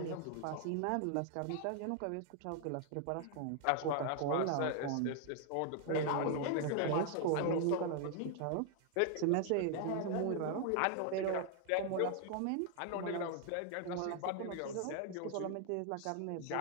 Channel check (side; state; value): both; different; correlation 0.00